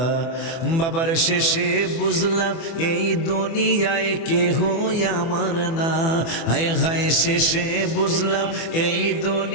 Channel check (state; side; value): late; right; 24 ms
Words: বাবার শেষে বুঝলাম এই দুনিয়ায় কেহ আমার না, হায় হায় শেষে বুঝলাম এই